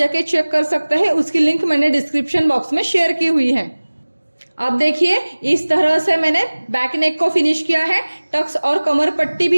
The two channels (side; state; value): both; inverted; correlation -1.00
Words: चेक कर सकते हैं। उसकी लिंक मैंने डिस्क्रिप्शन बॉक्स में शेयर की हुई है। अब देखिए इस तरह से मैंने बैक नेक को फिनिश किया है, टक्स और कमर पट्टी